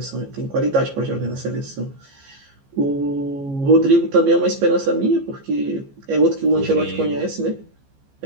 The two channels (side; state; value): left; late; 15 ms